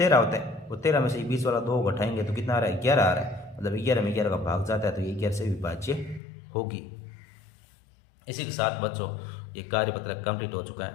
होता है। और 13 में से 20 वाला 2 घटाएंगे तो कितना आ रहा है, 11 आ रहा है। मतलब 11 में 11 का भाग जाता है तो ये 11 से विभाज्य होगी। इसी के साथ बच्चों ये कार्यपत्र कंप्लीट हो चुका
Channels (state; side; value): drops out; right; at 6.2 s